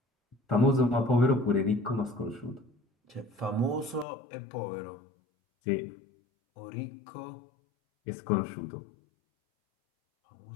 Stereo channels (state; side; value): drops out; right; at 4.0 s